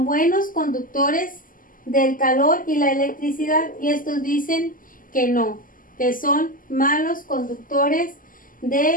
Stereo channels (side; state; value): right; late; 0.40 ms